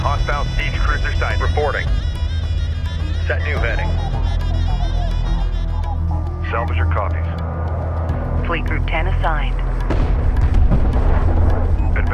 Hostile siege cruiser sighted. Reporting. Set new heading. Salvager copies. Fleet Group 10 assigned.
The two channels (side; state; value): both; identical; correlation 1.00